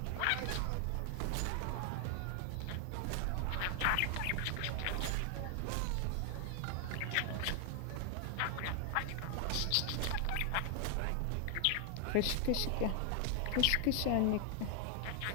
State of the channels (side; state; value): both; different; correlation 0.00